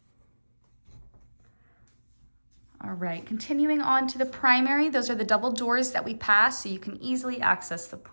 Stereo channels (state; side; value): inverted; both; correlation -1.00